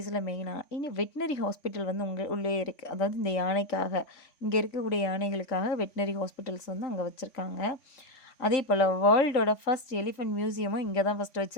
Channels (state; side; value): late; right; 3.5 ms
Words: மெயினாக இனி வெட்டினரி ஹாஸ்பிட்டல் வந்து உள்ளே இருக்குது. அதாவது இந்த யானைக்காக, இங்கே இருக்கக்கூடிய யானைகளுக்காக வெட்டினரி ஹாஸ்பிட்டல்ஸ் வந்து அங்கே வச்சுருக்காங்க. அதே போல் வேர்ல்டோட ஃபர்ஸ்ட் எலிஃபெண்ட் மியூசியமும் இங்கே தான் ஃபஸ்ட்டு